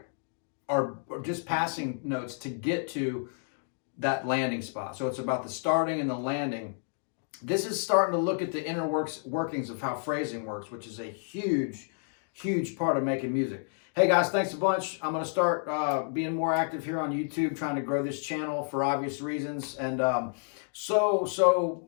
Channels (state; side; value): silent; right; digital silence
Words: are just passing notes to get to that landing spot. So it's about the starting and the landing. This is starting to look at the inner workings of how phrasing works, which is a huge part of making music. Hey guys, thanks a bunch. I'm going to start being more active here on YouTube, trying to grow this channel for obvious reasons. And so